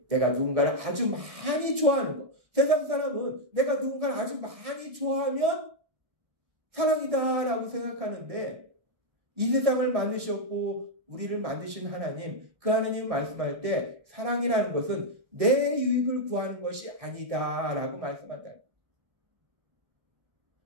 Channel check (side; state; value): left; late; 1.6 ms